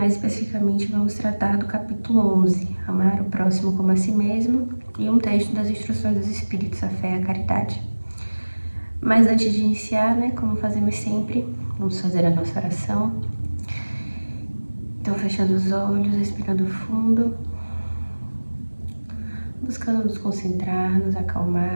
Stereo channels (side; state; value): both; inverted; correlation -1.00